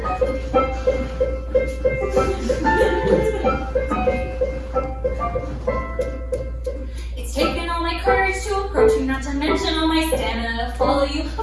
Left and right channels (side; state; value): both; identical; correlation 1.00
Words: It's taken all my courage to approach you, not to mention all my stamina to follow you